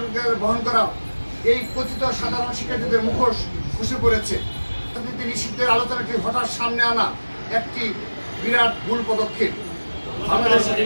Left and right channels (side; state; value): both; inverted; correlation -1.00